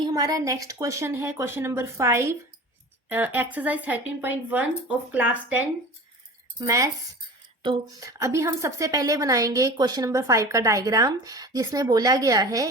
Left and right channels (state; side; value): normal; both; correlation 0.37